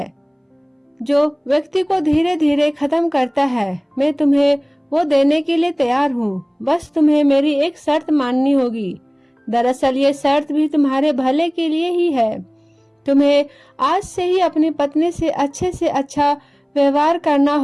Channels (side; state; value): both; identical; correlation 1.00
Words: जो व्यक्ति को धीरे धीरे खत्म करता है। मैं तुम्हें वो देने के लिए तैयार हूँ, बस तुम्हें मेरी एक शर्त माननी होगी। दरअसल ये शर्त भी तुम्हारे भले के लिए ही है। तुम्हें आज से ही अपनी पत्नी से अच्छा व्यवहार करना